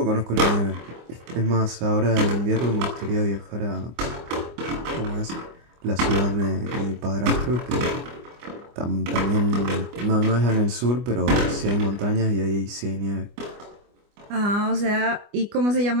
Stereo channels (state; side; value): late; left; 25 ms